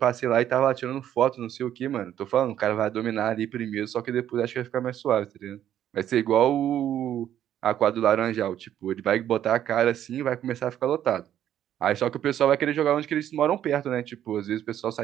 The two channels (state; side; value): quieter; left; 10.9 dB